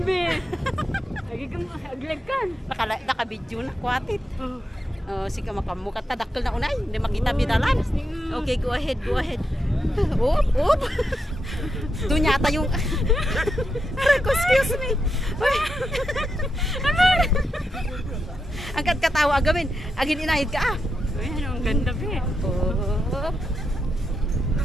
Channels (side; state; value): both; normal; correlation 0.85